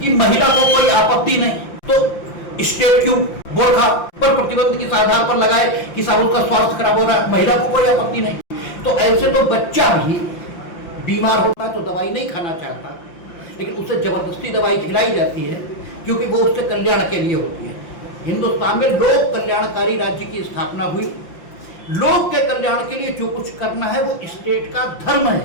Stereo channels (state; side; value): late; right; 5.8 ms